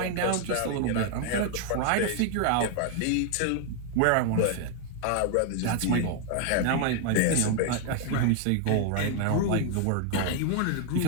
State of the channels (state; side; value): different; both; correlation 0.00